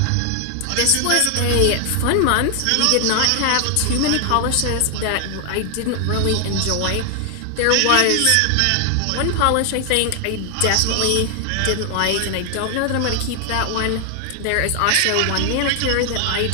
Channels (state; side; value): different; both; correlation 0.00